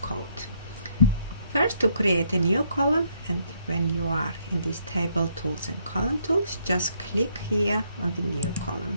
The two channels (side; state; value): both; inverted; correlation -0.71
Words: First, to create a new column, and when you are in this table tools and column tools, just click here on the new